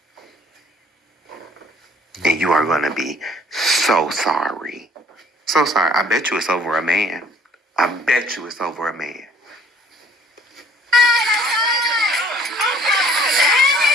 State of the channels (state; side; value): normal; both; correlation 0.57